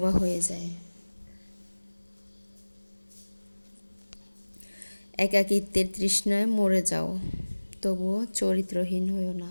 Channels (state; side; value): inverted; both; correlation -1.00